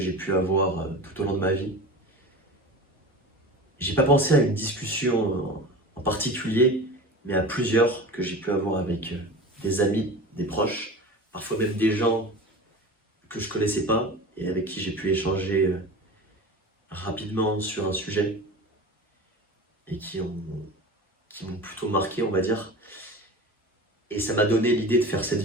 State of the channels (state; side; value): normal; both; correlation 0.33